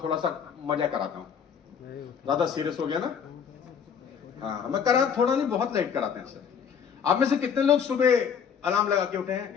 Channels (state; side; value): quieter; right; 7.4 dB